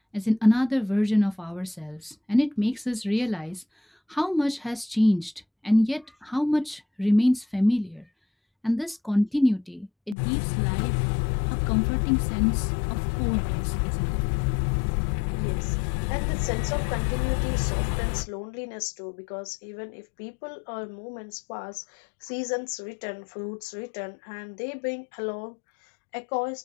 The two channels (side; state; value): right; drops out; at 10.2 s